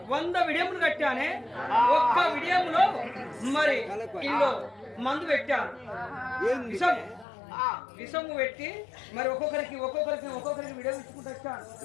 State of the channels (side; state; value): right; drops out; at 7.2 s